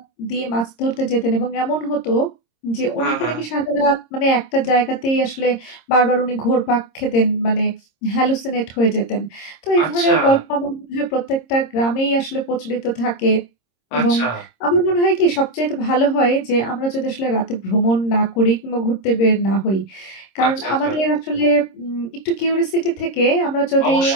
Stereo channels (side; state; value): right; late; 26 ms